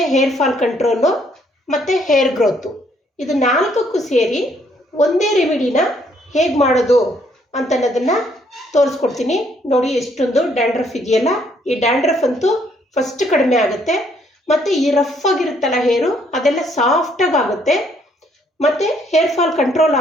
ಹೇರ್ ಫಾಲ್ ಕಂಟ್ರೋಲು ಮತ್ತು ಹೇರ್ ಗ್ರೋತು, ಇದು ನಾಲ್ಕಕ್ಕೂ ಸೇರಿ ಒಂದೇ ರೆಮಿಡಿನ ಹೇಗೆ ಮಾಡೋದು ಅಂತನ್ನೋದನ್ನು ತೋರಿಸ್ಕೊಡ್ತೀನಿ. ನೋಡಿ ಎಷ್ಟೊಂದು ಡ್ಯಾಂಡ್ರಫ್ ಇದೆಯಲ್ಲ, ಈ ಡ್ಯಾಂಡ್ರಫ್ ಅಂತೂ ಫಸ್ಟ್ ಕಡಿಮೆ ಆಗುತ್ತೆ. ಮತ್ತು ಈ ರಫ್ ಆಗಿರುತ್ತಲ್ಲ ಹೇರು ಅದೆಲ್ಲ ಸಾಫ್ಟಾಗಿ ಆಗುತ್ತೆ, ಮತ್ತು ಹೇರ್ ಫಾಲ್ ಕಂಟ್ರೋಲ್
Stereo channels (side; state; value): both; normal; correlation 0.68